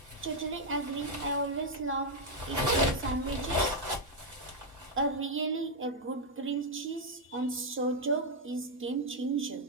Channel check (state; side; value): normal; both; correlation -0.01